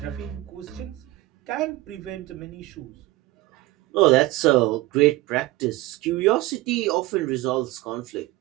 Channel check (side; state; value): left; quieter; 18.6 dB